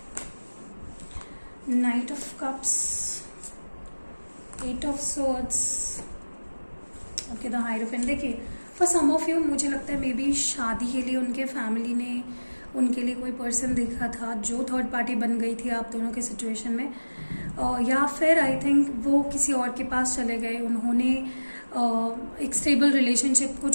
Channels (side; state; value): both; inverted; correlation -1.00